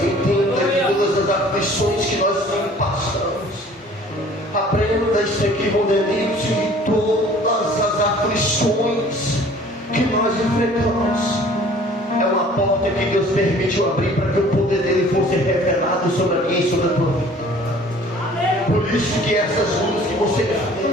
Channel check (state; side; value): normal; both; correlation 0.51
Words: entenda que todas as aflições que nós passamos, aprenda isso aqui, Mondelito, e todas as aflições que nós enfrentamos é uma porta que Deus permitiu abrir para que o poder dele fosse revelado sobre a minha e sobre a tua vida. Por isso que essas lutas que você